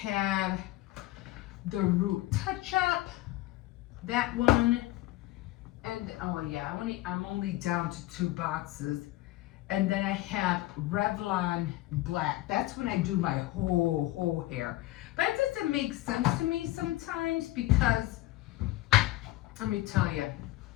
the root touch-up, that one. And, oh yeah, I'm only down to 2 boxes. And then I have Revlon Black. That's when I do my whole hair. But it doesn't make sense to me sometimes because, let me tell you.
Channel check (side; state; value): right; quieter; 17.3 dB